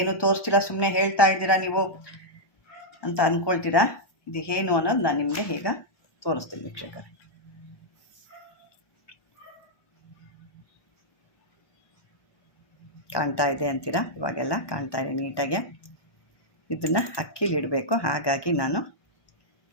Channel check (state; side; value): late; right; 1.1 ms